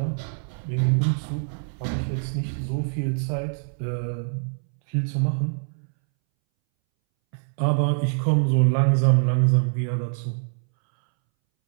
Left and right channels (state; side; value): silent; left; 62 dB below the other